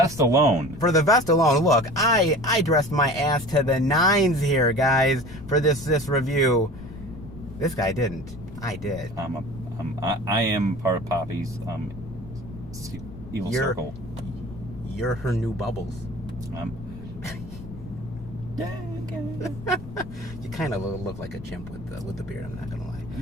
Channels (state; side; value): noise; left; rumble, 14 dB below the sound